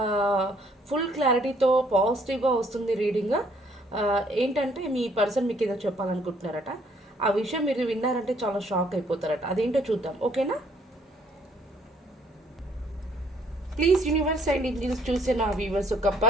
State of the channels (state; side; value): normal; both; correlation 0.65